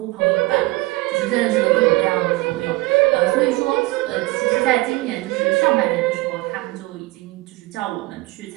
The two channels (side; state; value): left; quieter; 21.4 dB